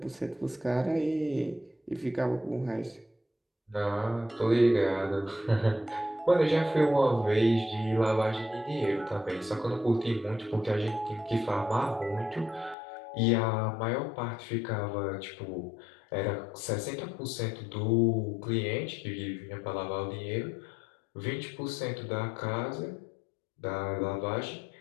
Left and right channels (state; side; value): drops out; right; at 12.8 s